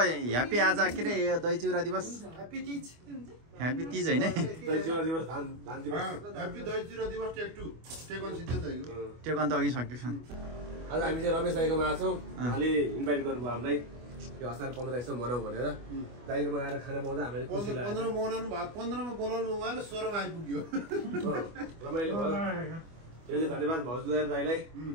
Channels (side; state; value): left; late; 25 ms